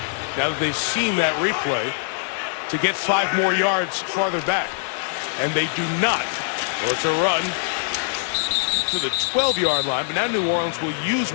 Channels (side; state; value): right; silent; digital silence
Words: now that they've seen that replay, to get 5 more yards farther back? And they do not. Well, it's a run to the 12-yard line, but now New Orleans will use